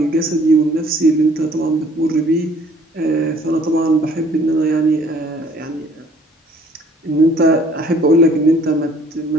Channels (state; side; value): normal; both; correlation 0.57